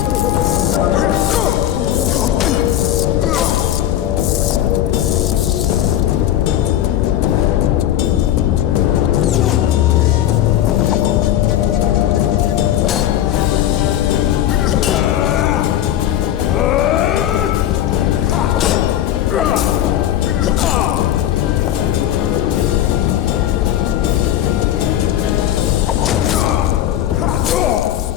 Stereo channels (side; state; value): right; quieter; 11.9 dB